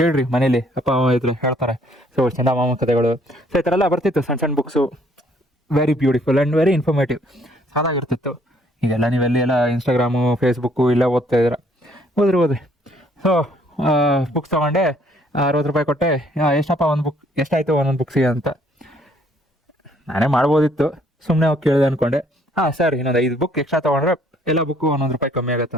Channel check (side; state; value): both; normal; correlation 0.64